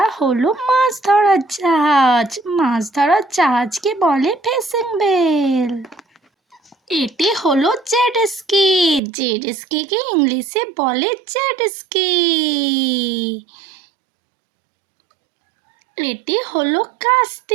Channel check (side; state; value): left; drops out; at 9.0 s